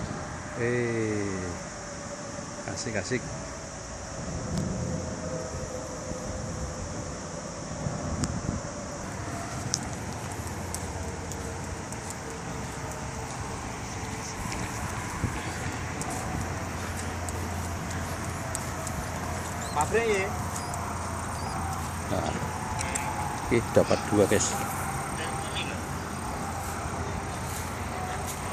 Asik-asik. Pabrik ya. Nah, dapat dua guys.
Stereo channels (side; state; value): both; identical; correlation 1.00